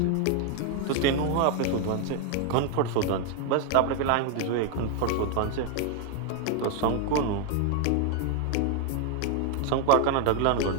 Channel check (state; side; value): different; both; correlation 0.01